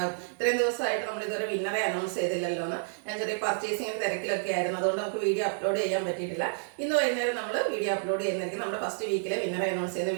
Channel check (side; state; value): left; silent; digital silence